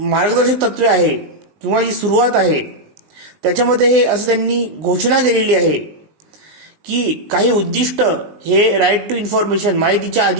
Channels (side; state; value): left; late; 19 ms